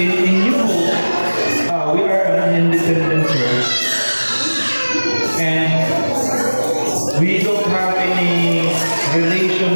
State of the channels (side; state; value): both; inverted; correlation -1.00